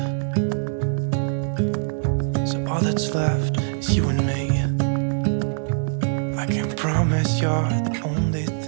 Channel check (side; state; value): left; silent; digital silence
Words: so all that's left is you and me. I can promise you're the only